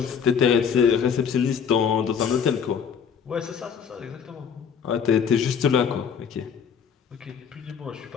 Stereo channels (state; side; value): quieter; right; 7.1 dB